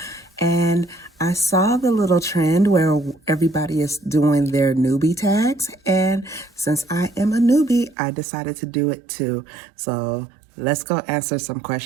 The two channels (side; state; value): left; drops out; at 8.0 s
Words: And I saw the little trend where everybody is doing their newbie tags, and since I am a newbie, I decided to do it too. So let's go answer some